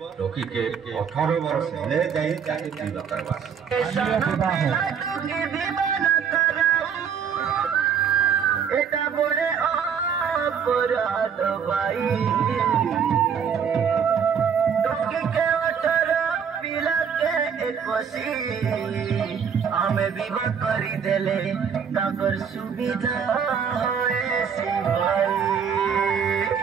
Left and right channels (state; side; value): quieter; left; 7.2 dB